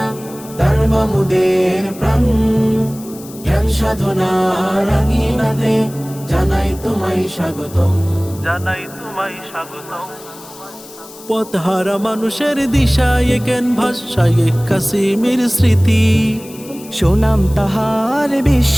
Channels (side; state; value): left; noise; hiss, 19 dB below the sound